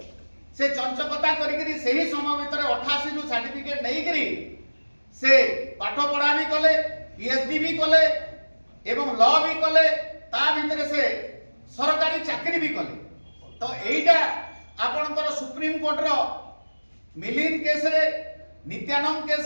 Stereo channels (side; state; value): both; inverted; correlation -1.00